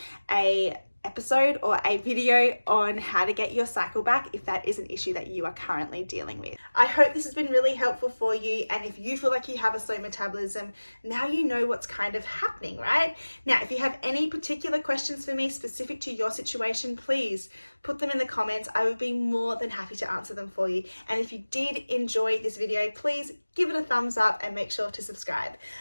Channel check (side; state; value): both; inverted; correlation -1.00